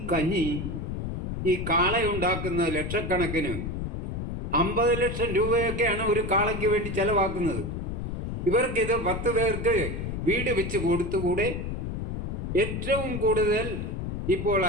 കഞ്ഞി, ഈ കാളയുണ്ടാക്കുന്ന ലക്ഷക്കണക്കിന് 50 ലക്ഷം രൂപയൊക്കെയാണ് ഒരു കാളയ്ക്ക് വേണ്ടി ചെലവാക്കുന്നത്. ഇവർക്കിത് 10 പേർക്ക് വീട് വെച്ച് കൊടുത്തുകൂടെ? ഏറ്റവും കൂടുതൽ ഇപ്പോൾ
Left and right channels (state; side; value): noise; left; rumble, 4 dB below the sound